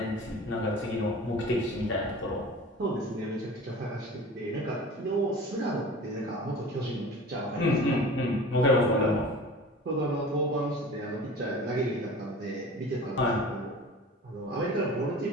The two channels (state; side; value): normal; both; correlation 0.39